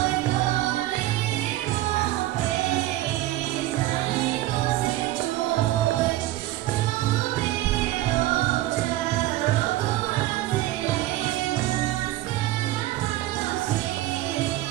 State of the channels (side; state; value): left; quieter; 16.0 dB